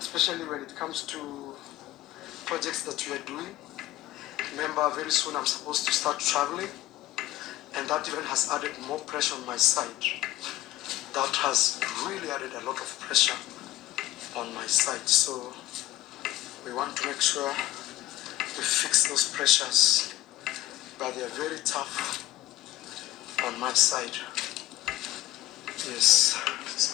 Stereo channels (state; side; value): quieter; right; 15.5 dB